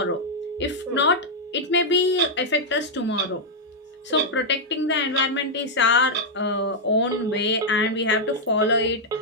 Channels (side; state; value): both; normal; correlation -0.03